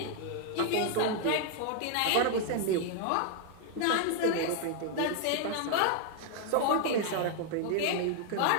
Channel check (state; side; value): different; both; correlation 0.00